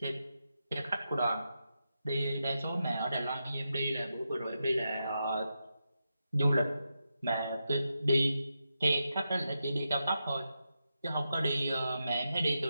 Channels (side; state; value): both; inverted; correlation -0.87